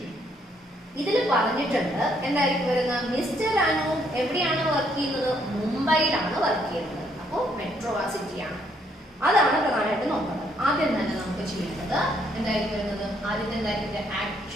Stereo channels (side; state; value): both; normal; correlation 0.70